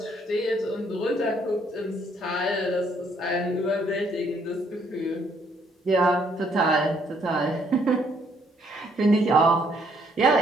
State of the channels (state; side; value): normal; both; correlation 0.68